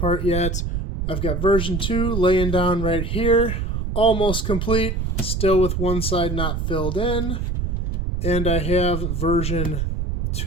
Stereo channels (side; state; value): right; noise; rumble, 1 dB below the sound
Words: yet. I've got version 2 laying down right here, almost complete, still with one side not filled in. And I have version